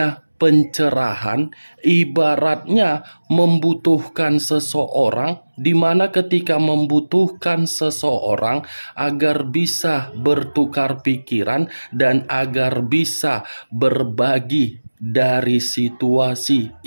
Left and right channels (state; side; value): inverted; both; correlation -1.00